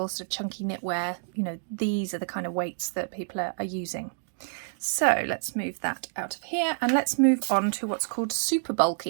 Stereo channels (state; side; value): silent; left; digital silence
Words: sort of chunky knitwear, you know, these are the kind of weights that people are using. So let's move that out of here and let's move on to what's called super